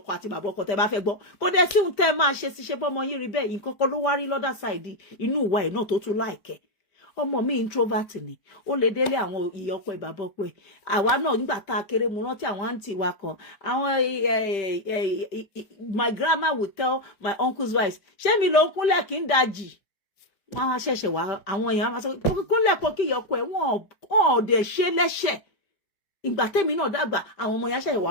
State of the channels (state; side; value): late; right; 5.1 ms